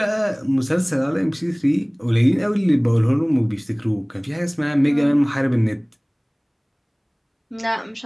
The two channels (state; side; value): identical; both; correlation 1.00